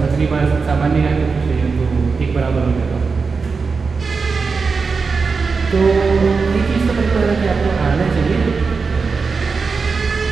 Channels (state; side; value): quieter; left; 4.8 dB